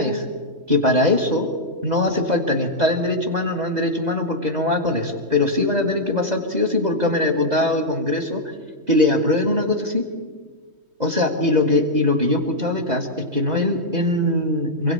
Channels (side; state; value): left; late; 3.2 ms